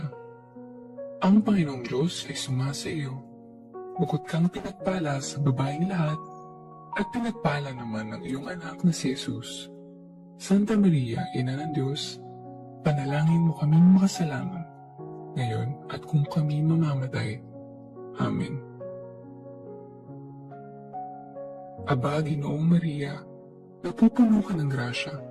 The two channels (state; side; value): identical; both; correlation 1.00